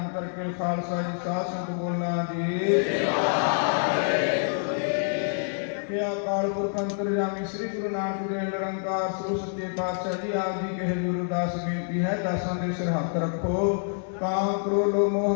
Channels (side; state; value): right; silent; digital silence